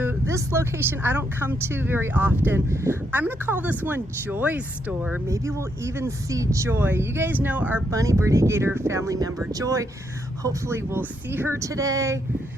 this location I don't come to very often. I'm gonna call this one Joy's store. Maybe we'll even see Joy. You guys know our Bunny Birdy Gator family member, Joy. Hopefully we'll see her today.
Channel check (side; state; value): both; normal; correlation 0.77